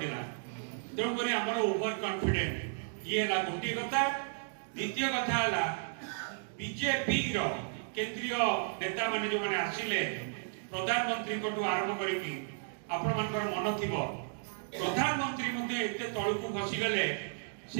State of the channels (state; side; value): silent; left; digital silence